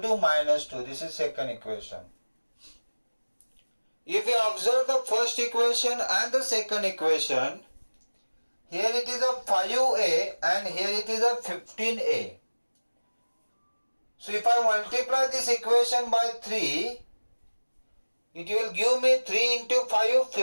to minus 2. This is second equation. If you observe the first equation and the second equation, here it is a 5a and here it is a 15a. So if I multiply this equation by 3, it will give me 3 into 5,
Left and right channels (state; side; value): inverted; both; correlation -1.00